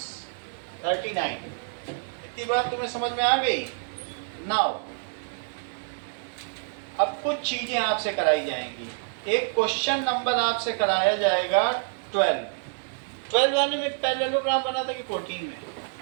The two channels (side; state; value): left; silent; 60 dB below the other